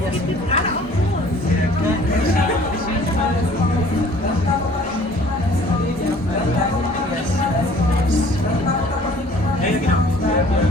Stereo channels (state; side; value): normal; both; correlation 0.53